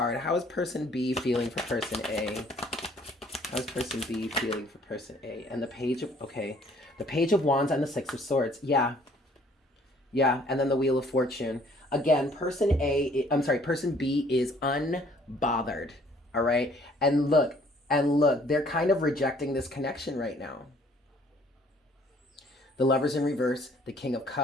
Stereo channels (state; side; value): normal; both; correlation 0.59